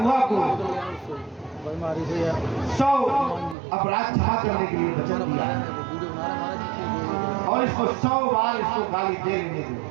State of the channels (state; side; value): drops out; left; at 3.6 s